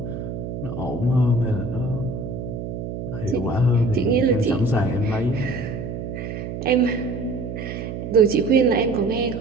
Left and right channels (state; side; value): noise; right; hum, 6 dB below the sound